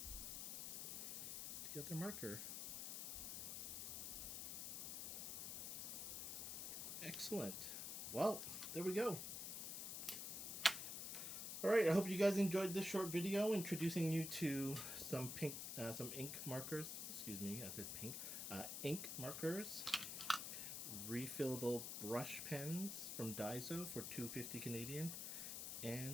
the other marker. Excellent. Well, there we go. Alright, I hope you guys enjoyed this short video introducing you to some ink markers. Excuse me, I said pink. Ink markers. Refillable brush pens from Daiso for $2.50 Canadian.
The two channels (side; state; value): left; noise; hiss, 4 dB below the sound